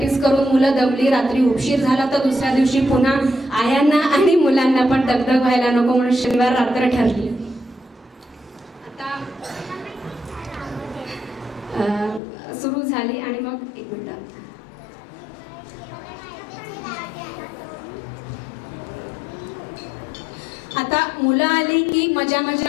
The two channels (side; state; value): right; drops out; at 12.2 s